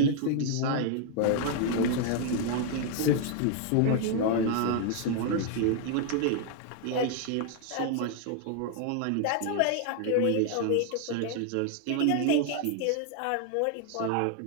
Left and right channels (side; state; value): both; different; correlation 0.00